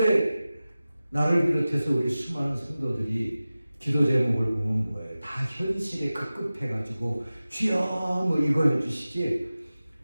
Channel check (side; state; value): both; inverted; correlation -0.96